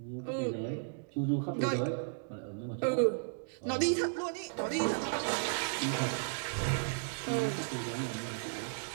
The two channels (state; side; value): silent; left; digital silence